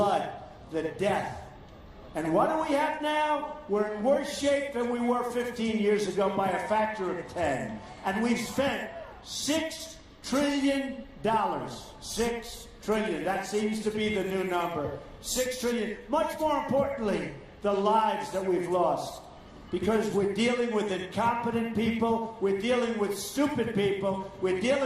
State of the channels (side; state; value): both; identical; correlation 1.00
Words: the death. And what do we have now? We're in worse shape than we were 15 years ago by a factor of 10. And we've spent $6 trillion. $6 trillion. That seems to be the new number. $6 trillion. Much more importantly, the lives that we've lost. Because we're dealing with incompetent people, we're dealing with stupid people, we're